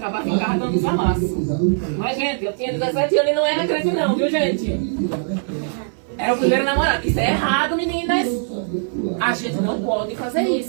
ficava dando os amassos. Mas, gente, eu tinha 17 anos e não era crente não, viu, gente? Era o primeiro namorado. Isso é errado, meninas. A gente não pode fazer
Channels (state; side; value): silent; left; 65 dB below the other